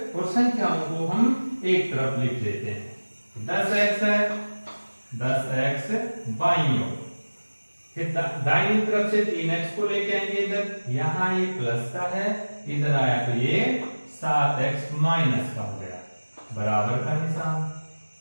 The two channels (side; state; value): both; inverted; correlation -1.00